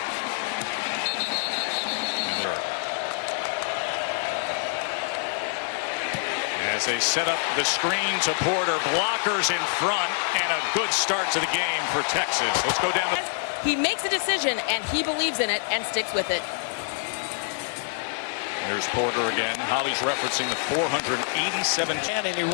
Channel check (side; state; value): right; silent; 61 dB below the other